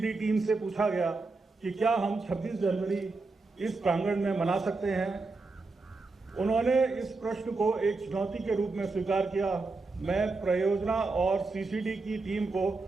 टीम से पूछा गया कि क्या हम 26 जनवरी इस प्रांगण में मना सकते हैं। उन्होंने इस प्रश्न को एक चुनौती के रूप में स्वीकार किया। मैं परियोजना और सीसीडी की टीम को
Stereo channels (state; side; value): quieter; left; 3.7 dB